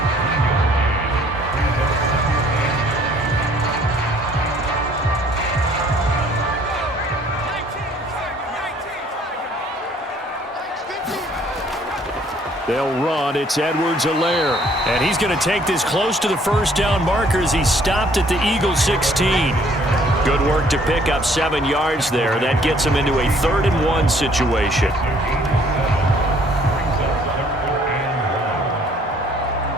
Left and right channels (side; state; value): both; normal; correlation 0.60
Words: They'll run. It's Edwards-Helaire. And he's going to take this close to the 1st down marker as he stopped at the Eagles 16. Good work to pick up 7 yards there. That gets him into a 3rd and 1 situation.